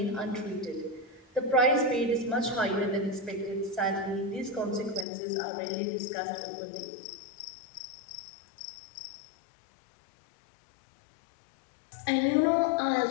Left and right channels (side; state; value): right; drops out; at 5.1 s